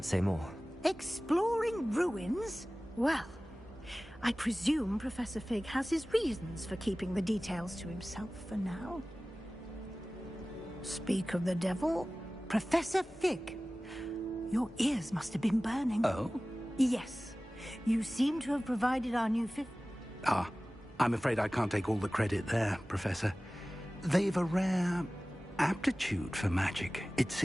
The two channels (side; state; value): both; normal; correlation 0.97